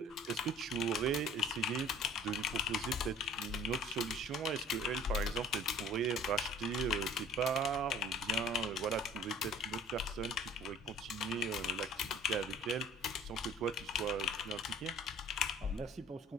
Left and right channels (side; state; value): both; normal; correlation 0.49